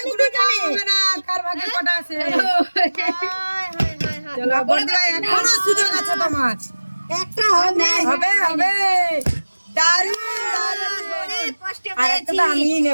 কার ভাগে কটা আছে? এখনো সুযোগ আছে তোমার। একটা হবে হবে হবে। আর একটা তো আমি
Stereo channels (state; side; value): inverted; both; correlation -1.00